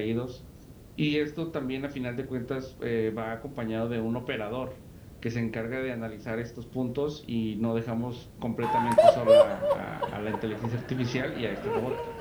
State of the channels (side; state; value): both; identical; correlation 1.00